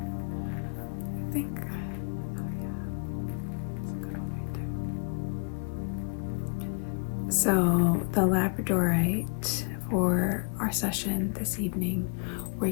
I think, oh yeah, it's a good one right there. So the labradorite, for our session this evening, we're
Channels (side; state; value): right; quieter; 38.7 dB